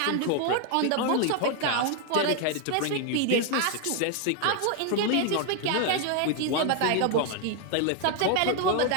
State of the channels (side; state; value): both; different; correlation 0.00